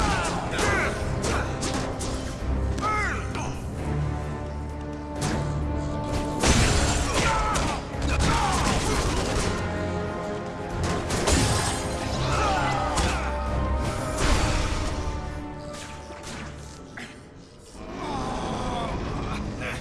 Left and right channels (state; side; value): identical; both; correlation 1.00